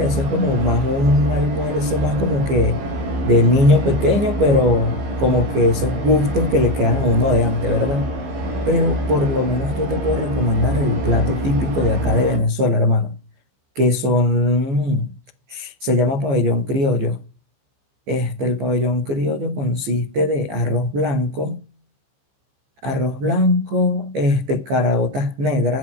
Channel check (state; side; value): late; left; 15 ms